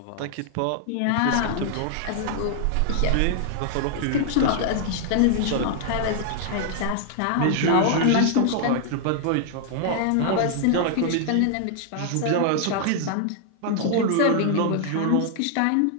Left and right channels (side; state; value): both; different; correlation 0.00